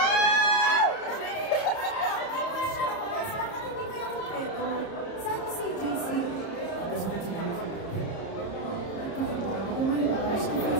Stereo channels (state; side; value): late; right; 30 ms